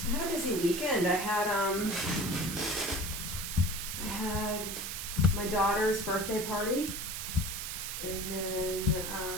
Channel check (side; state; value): right; noise; hiss, 5 dB below the sound